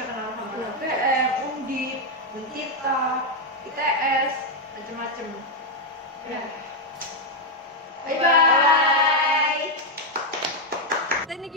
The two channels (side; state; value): both; normal; correlation 0.01